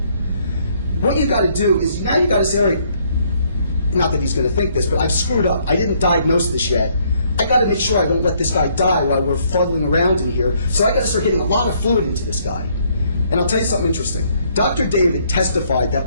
What you've got to do is, now you've got to say, all right, not that he's going to think this, but I've screwed up. I didn't diagnose this yet. I got to make sure I don't let this guy die while we're fuddling around in here. So I got to start getting a lot of fluid into this guy. And I'll tell you something interesting. Dr. David testified that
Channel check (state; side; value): inverted; both; correlation -0.67